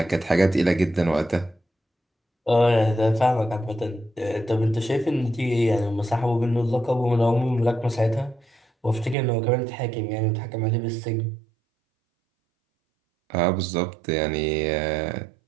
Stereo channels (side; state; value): left; drops out; at 9.2 s